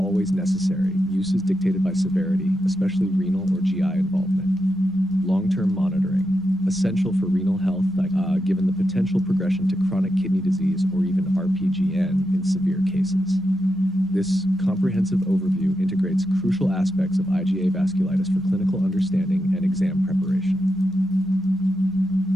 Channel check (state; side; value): normal; both; correlation 0.86